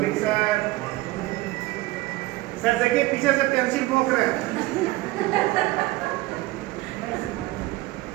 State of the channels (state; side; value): quieter; left; 19.3 dB